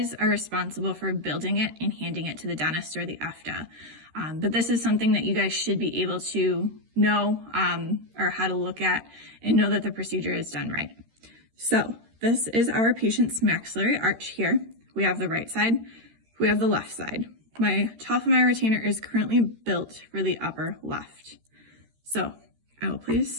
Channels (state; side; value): late; left; 13 ms